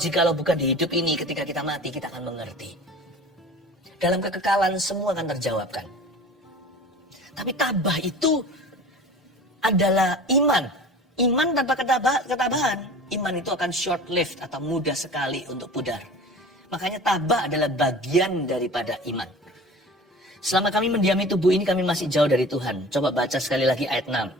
jikalau bukan di hidup ini, ketika kita mati kita akan mengerti. Dalam kekekalan semua akan terjawabkan. Tapi tabah itu adalah iman. Iman tanpa ketabahan. Iman itu akan short lived atau mudah sekali untuk pudar. Makanya tabah adalah bagian daripada iman. Selama kami mendiami tubuh ini, kami masih jauh dari Tuhan. Coba baca sekali lagi ayat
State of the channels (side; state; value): both; normal; correlation 0.40